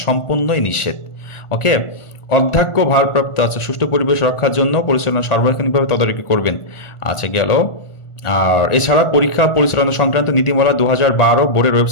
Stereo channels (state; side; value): late; right; 1.4 ms